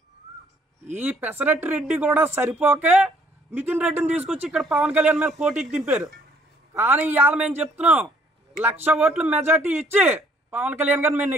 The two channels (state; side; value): normal; both; correlation 0.63